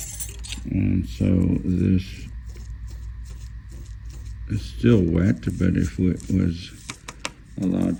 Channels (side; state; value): both; identical; correlation 1.00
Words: And so this is still wet, but if it was allowed